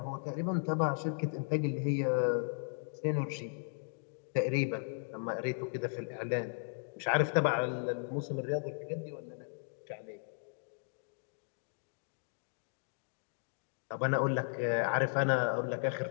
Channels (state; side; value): silent; right; digital silence